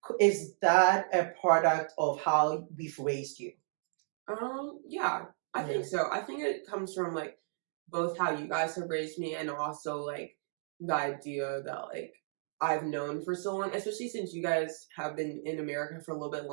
Is that a product of how we've raised you? Yeah, I Yeah. think so. I think it comes from like both how you guys have raised me and also like the idea that like I've known for so long, especially since you guys have been in America for a little bit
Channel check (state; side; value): silent; left; digital silence